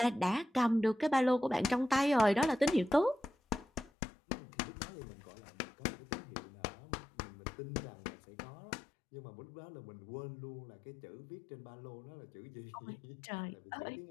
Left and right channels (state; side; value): drops out; right; at 3.9 s